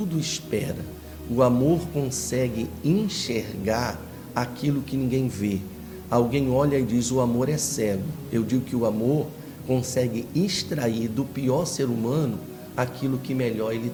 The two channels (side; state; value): both; identical; correlation 1.00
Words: espera. O amor consegue enxergar aquilo que ninguém vê. Alguém olha e diz: o amor é cego. Eu digo que o amor consegue extrair do pior ser humano aquilo que melhor ele